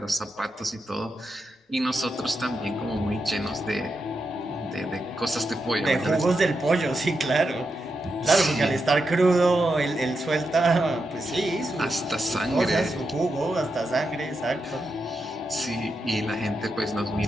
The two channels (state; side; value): normal; both; correlation 0.86